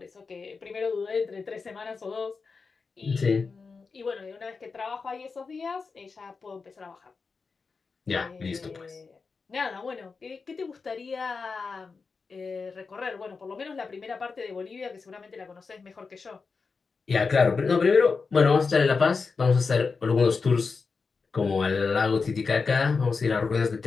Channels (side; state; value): right; quieter; 4.7 dB